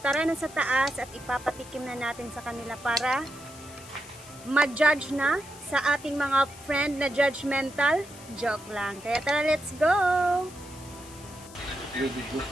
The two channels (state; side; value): noise; left; hiss, 19 dB below the sound